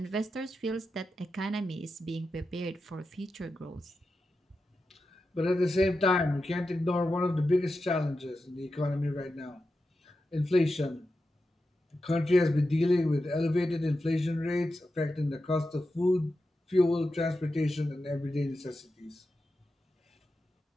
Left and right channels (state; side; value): normal; both; correlation 0.90